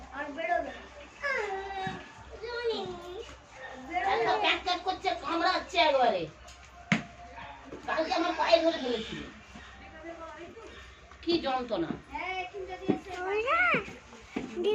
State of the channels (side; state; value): both; identical; correlation 1.00